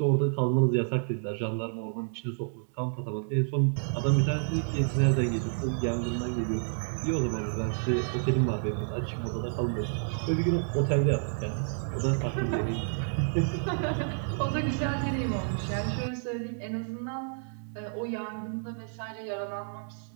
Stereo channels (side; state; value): left; silent; 58 dB below the other